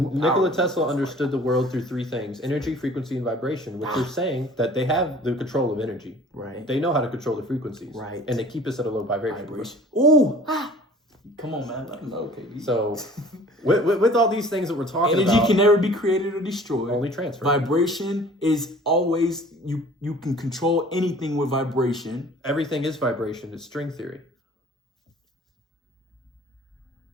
Nikola power. Tesla understood the world through three things: energy, frequency, and vibration, which they're saying that they have the control of energy. Right. They know how to control the frequencies. Right. And they keep us at a low vibration. Ooh. Come on, man. Let them know, KB. So, with all these things that we're talking about, energy can never be created or destroyed. Only transfer. Vibration is always, you can control anything with vibration. Everything is vibration. It's string theory.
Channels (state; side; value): normal; both; correlation 0.48